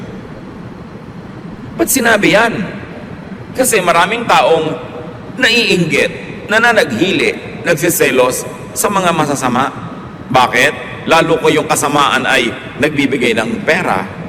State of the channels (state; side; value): identical; both; correlation 1.00